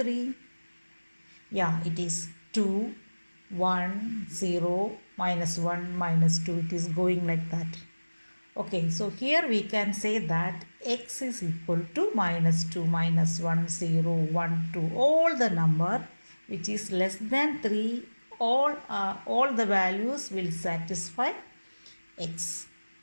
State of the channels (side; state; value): both; inverted; correlation -1.00